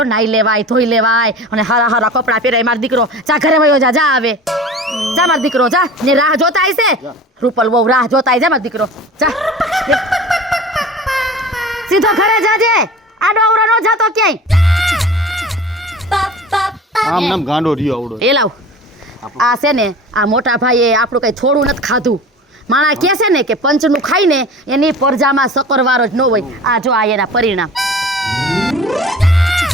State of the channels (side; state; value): both; normal; correlation 0.39